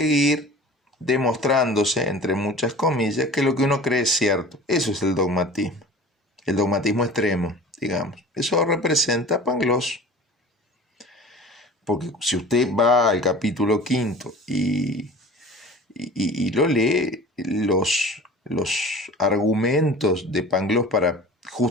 demostrándose, entre muchas comillas, que lo que uno cree es cierto. Eso es el dogmatismo extremo, digamos. Eso representa Pangloss. Porque si usted va al capítulo quinto y lo lee, los argumentos de Pangloss para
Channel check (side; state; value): both; normal; correlation 0.41